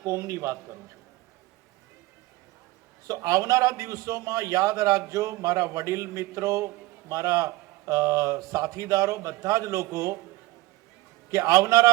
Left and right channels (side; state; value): left; quieter; 19.4 dB